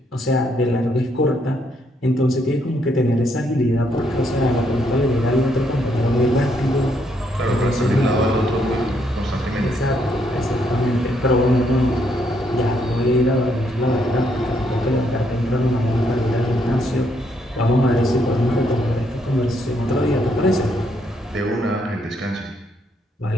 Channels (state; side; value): normal; both; correlation 0.73